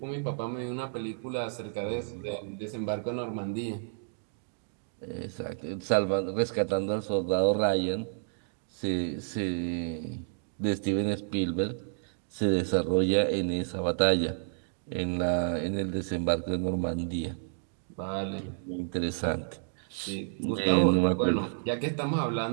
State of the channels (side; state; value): left; silent; digital silence